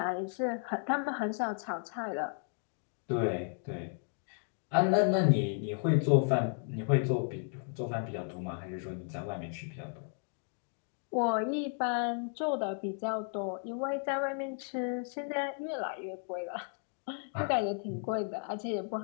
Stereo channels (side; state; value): right; silent; 55 dB below the other